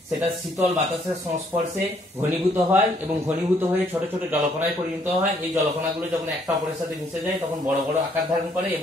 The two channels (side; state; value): both; normal; correlation 0.67